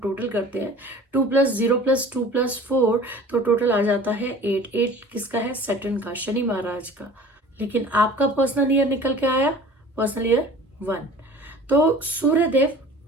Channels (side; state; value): both; normal; correlation 0.44